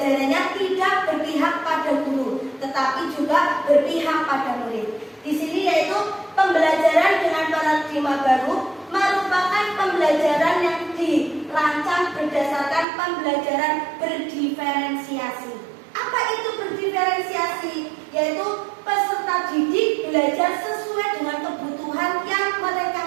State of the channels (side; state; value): left; drops out; at 12.9 s